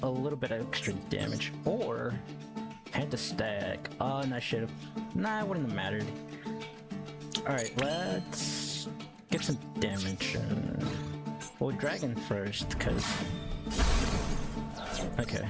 a little bit of extra damage, or hand to stack. Oh, and I should have. Nah, it wouldn't have mattered. Alright, let's get some damage. Well, Dragon first, because. Okay.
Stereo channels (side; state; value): both; identical; correlation 1.00